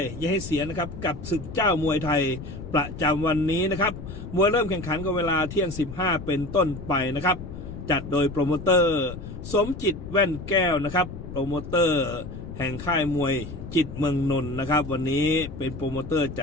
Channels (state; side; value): noise; left; rumble, 10 dB below the sound